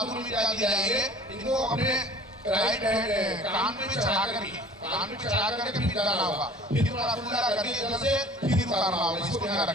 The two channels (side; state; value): both; normal; correlation 0.47